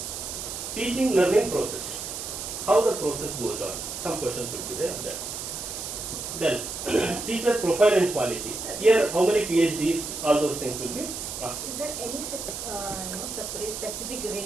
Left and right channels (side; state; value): right; noise; hiss, 6 dB below the sound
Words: Teaching learning process. How the process goes on. Some questions will be there on that. Then, teacher profile and quality. Here, how many PhDs, all those things will be asked. Is there any separate specific